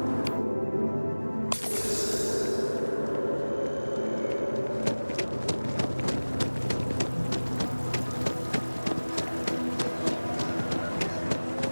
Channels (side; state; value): both; inverted; correlation -1.00